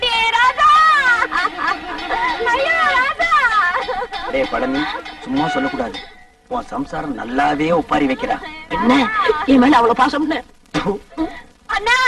ராதா. ஐயோ ராதா. டேய் பழனி, சும்மா சொல்லக்கூடாது. உன் சம்சாரம் நல்லாவே ஒப்பாரி வைக்கிறா. என்ன என் மேல அவ்வளவு பாசம்? அண்ணா,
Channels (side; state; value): both; identical; correlation 1.00